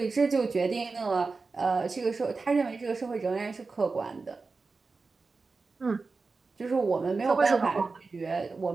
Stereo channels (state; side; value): quieter; left; 4.1 dB